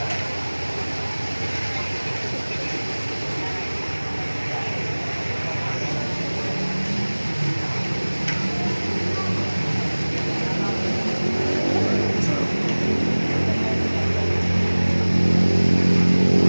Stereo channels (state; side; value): inverted; both; correlation -1.00